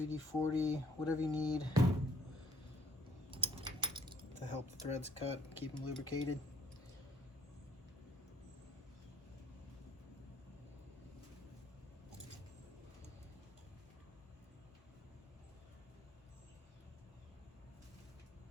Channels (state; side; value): normal; both; correlation 0.63